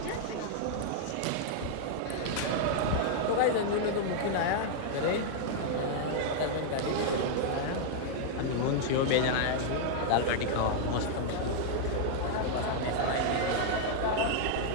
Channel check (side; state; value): both; different; correlation -0.01